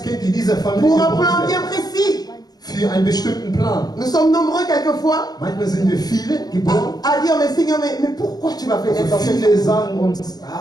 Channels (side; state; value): right; late; 0.19 ms